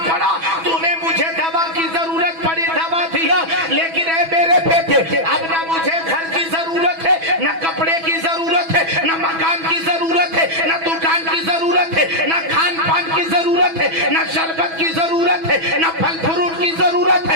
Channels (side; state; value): left; late; 6.1 ms